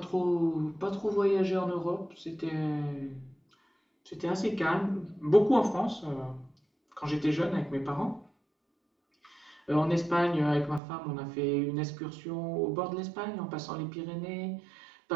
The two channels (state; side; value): drops out; left; at 10.8 s